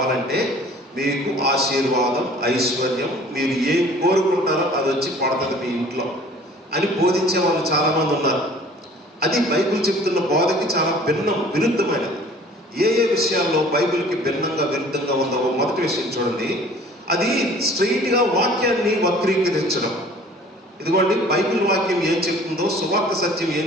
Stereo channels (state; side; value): normal; both; correlation 0.50